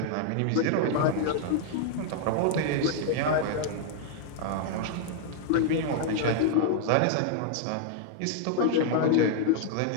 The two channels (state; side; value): different; both; correlation -0.01